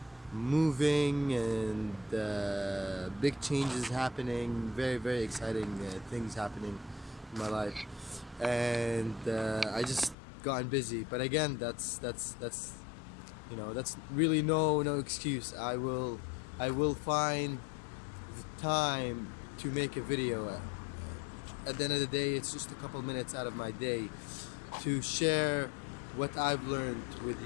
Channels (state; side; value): drops out; right; at 10.2 s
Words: moving and big changes happening. Very, very exciting things happening in my life. And I just gotten busy. But again, that's really no excuse. I will find the time to make a video. At the end of the day, it's just a couple minutes out of my day to share what I've learned with